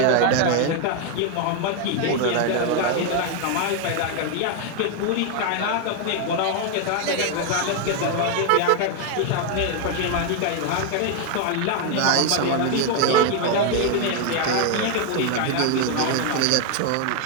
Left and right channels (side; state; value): both; different; correlation 0.01